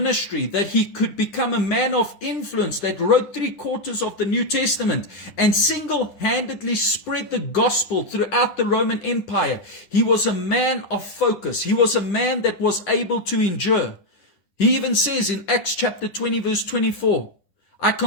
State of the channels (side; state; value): right; late; 10 ms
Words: that he could become a man of influence that wrote 3/4 of the New Testament and single-handedly spread the gospel throughout the Roman Empire. He was a man of focus. He was a man that was able to endure. He even says in Acts chapter 20, verse 24, I